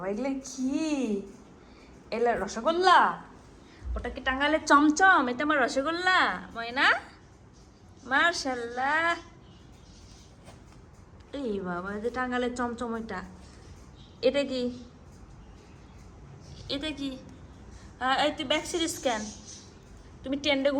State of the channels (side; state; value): both; identical; correlation 1.00